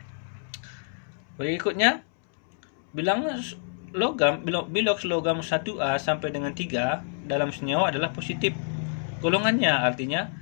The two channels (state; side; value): silent; right; 60 dB below the other